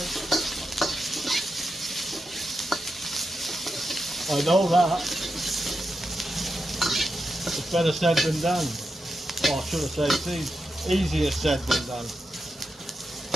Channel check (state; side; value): normal; both; correlation 0.87